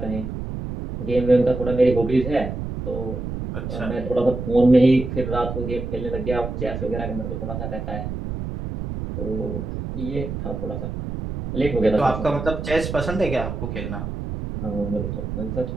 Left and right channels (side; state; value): right; noise; rumble, 5 dB below the sound